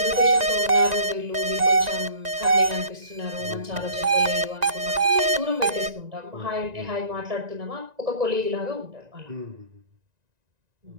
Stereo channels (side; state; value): left; late; 1.9 ms